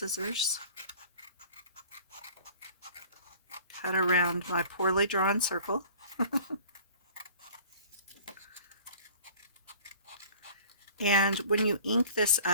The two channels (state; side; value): inverted; both; correlation -0.47